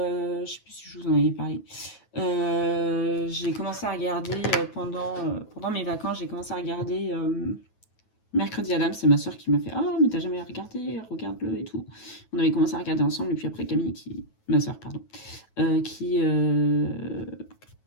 je sais plus si je vous en avais parlé. J'ai commencé à regarder pendant mes vacances, j'ai commencé à regarder Mercredi Adam. C'est ma soeur qui m'a fait ah mais t'as jamais regardé, regarde-le et tout. On avait commencé à regarder ensemble et puis après Camille ma soeur pardon, qui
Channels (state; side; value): late; right; 9.2 ms